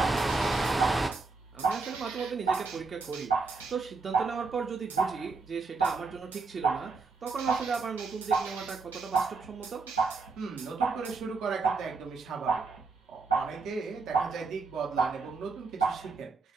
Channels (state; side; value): quieter; left; 4.3 dB